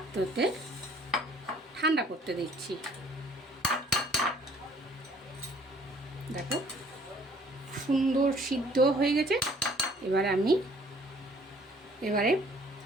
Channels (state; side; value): normal; both; correlation 0.57